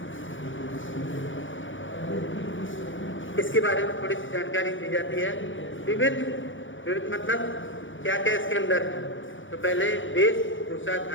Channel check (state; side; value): late; right; 0.56 ms